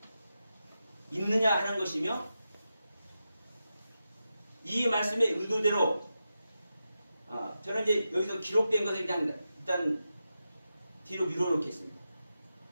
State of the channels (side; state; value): both; inverted; correlation -0.90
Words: 있느냐 하는 것이며 이 말씀의 의도대로 저는 이제 여기서 기록된 것을 그냥 일단 뒤로 밀어놓겠습니다.